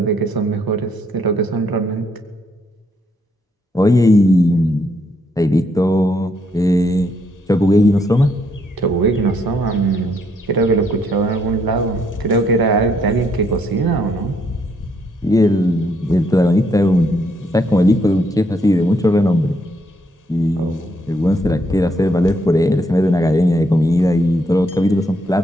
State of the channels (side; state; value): both; normal; correlation 0.73